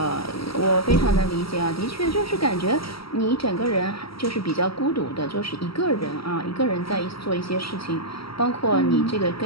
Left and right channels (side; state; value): right; late; 0.75 ms